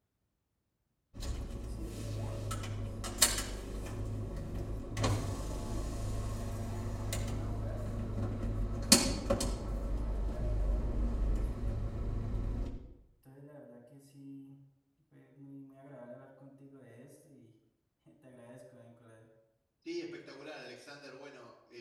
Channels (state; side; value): identical; both; correlation 1.00